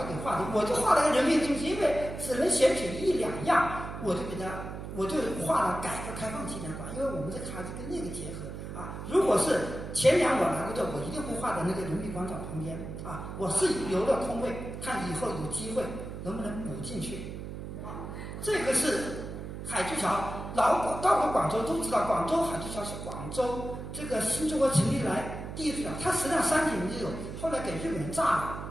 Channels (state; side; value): noise; right; hum, 8 dB below the sound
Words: 给画的，我就画了个人民中心，因为只能选取1-2样，我就画了改革开放纪念馆，因为我们这个孩子跟那个结合啊。如果是前年我来过这，我一定会画在那个人民广场旁边啊。我是留了空位，看以后有机会能不能补进去啊。这个是海珠桥，到过广州都知道，广州海珠桥是广州这个新中国成立来第一座桥，它实际上3几年就有，后来给日本人炸了。